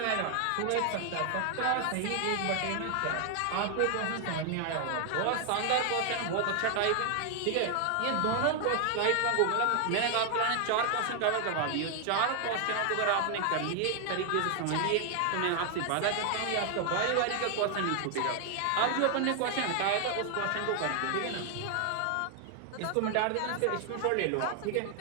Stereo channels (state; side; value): different; both; correlation 0.00